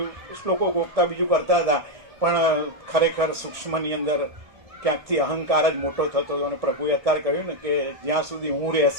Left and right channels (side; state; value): left; late; 1.7 ms